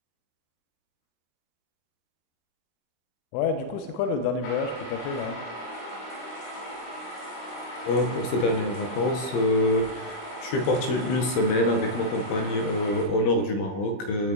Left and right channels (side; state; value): right; late; 19 ms